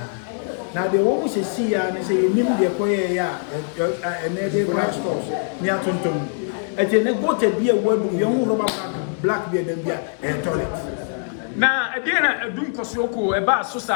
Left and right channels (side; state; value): right; silent; digital silence